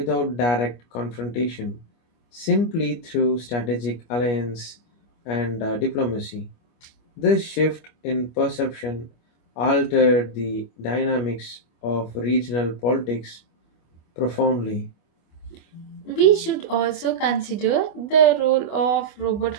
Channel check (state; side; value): late; right; 25 ms